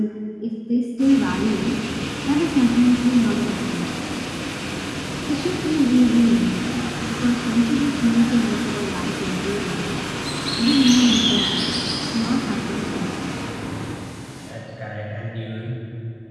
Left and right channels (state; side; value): identical; both; correlation 1.00